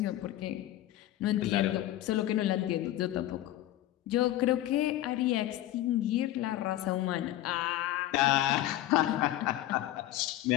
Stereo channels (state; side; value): quieter; right; 14.3 dB